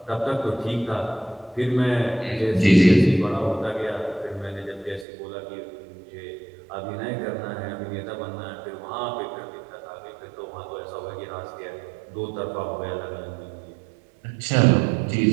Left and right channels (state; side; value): drops out; left; at 5.1 s